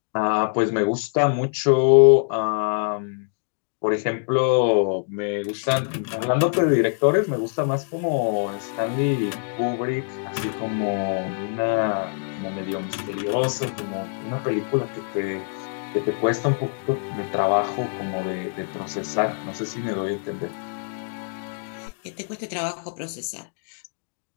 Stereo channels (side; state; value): right; silent; digital silence